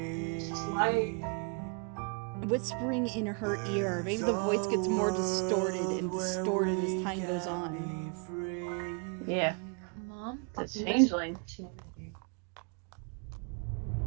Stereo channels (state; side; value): quieter; left; 37.4 dB